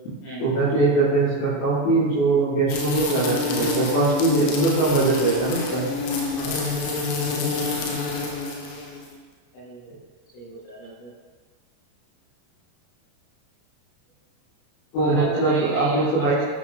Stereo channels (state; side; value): late; right; 33 ms